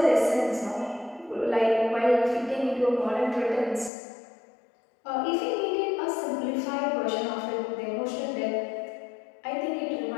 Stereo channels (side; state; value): right; drops out; at 3.9 s